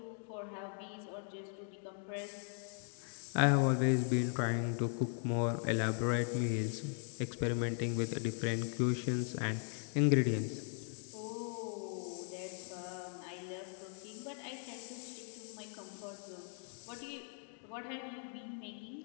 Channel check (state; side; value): silent; right; 52 dB below the other